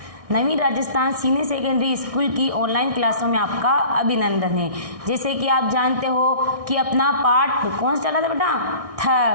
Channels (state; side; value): late; left; 1.6 ms